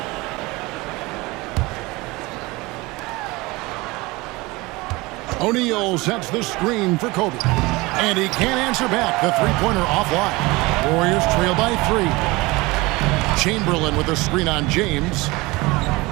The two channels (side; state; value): left; quieter; 22.6 dB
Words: O'Neal sets the screen for Kobe. And he can't answer back. The three-pointer offline. Warriors trail by 3. Chamberlain with a screen on James.